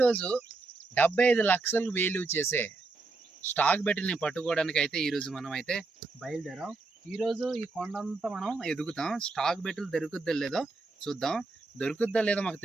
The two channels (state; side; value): quieter; left; 3.7 dB